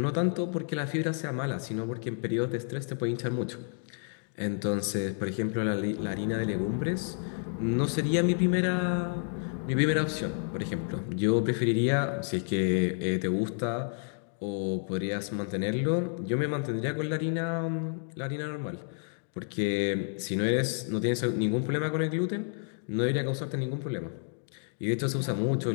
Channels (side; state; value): right; silent; 58 dB below the other